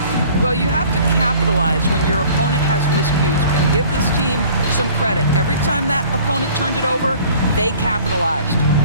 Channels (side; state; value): both; inverted; correlation -0.51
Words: Well, you have to capitalize when your opponent has miscues, and give this team some credit. Every time that opponent turned it over, they capitalized.